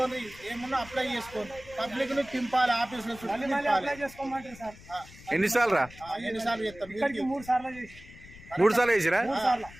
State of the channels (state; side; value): noise; left; rumble, 19 dB below the sound